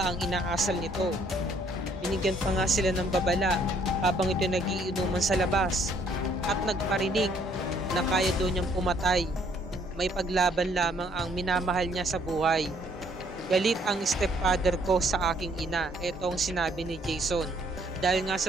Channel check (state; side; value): normal; both; correlation 0.65